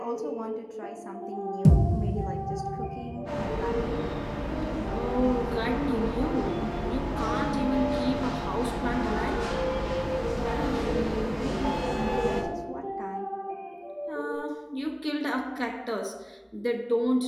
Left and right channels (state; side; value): identical; both; correlation 1.00